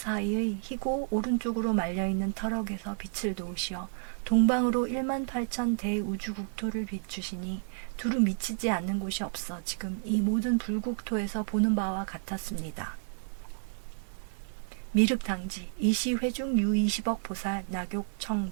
희고 오른쪽으로 말려있는 터럭에서 빛을 놓으시어 동방으로 18,000 대우주국토를 비추시니 두루 미치지 않는 곳이 없어 지금 이 모든 불국토에서 보는 바와 같았습니다. 미륵당지 이시회중 유20억 보살 낙욕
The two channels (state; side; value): silent; left; 57 dB below the other